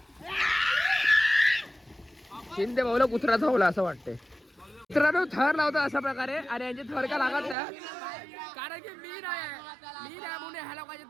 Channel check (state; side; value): drops out; left; at 7.6 s